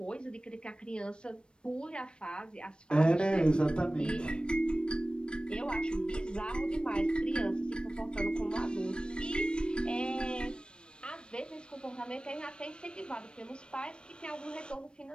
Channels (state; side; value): late; right; 0.054 ms